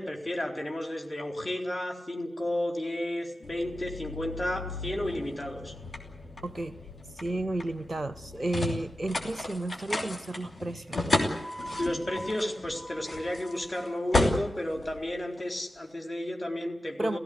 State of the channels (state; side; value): normal; both; correlation 0.91